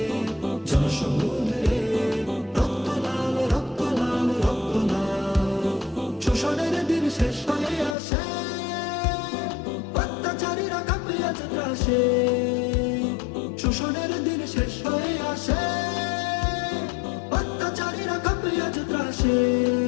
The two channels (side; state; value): right; drops out; at 8.0 s